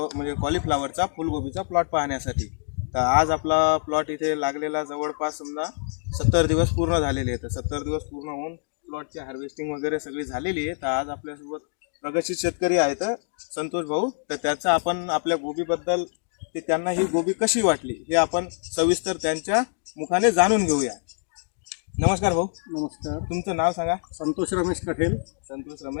कॉलीफ्लावरचा फुलगोबीचा प्लॉट पाहण्यासाठी। तर आज आपला प्लॉट इथे लागलेला जवळपास समजा 70 दिवस पूर्ण झालेले आहेत। 70 दिवस पूर्ण होऊन प्लॉटची हार्वेस्टिंग वगैरे सगळी झालेली आहे। तर आज आपल्यासोबत प्रगतशील शेतकरी आहेत संतोष भाऊ। तर त्याचा आपण आपल्या गोबीबद्दल ते त्यांना ही गोबी कशी वाटली हे आपण सविस्तर त्यांच्या मुखाने जाणून घेऊया। नमस्कार भाऊ। नमस्कार। तुमचं नाव सांगा। संतोष रमेश कठेल। संतोष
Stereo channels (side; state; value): right; silent; digital silence